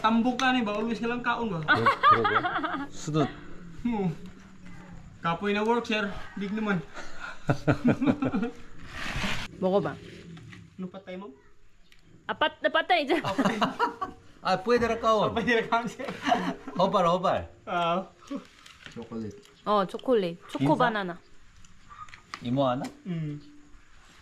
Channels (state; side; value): identical; both; correlation 1.00